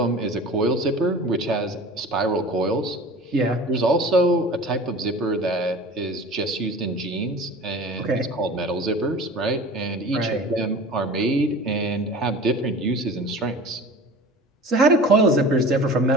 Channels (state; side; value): normal; both; correlation 0.39